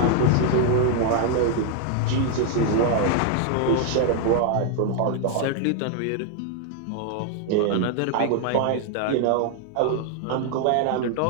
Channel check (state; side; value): different; both; correlation 0.00